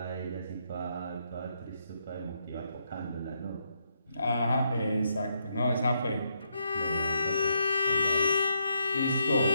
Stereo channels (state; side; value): inverted; both; correlation -0.77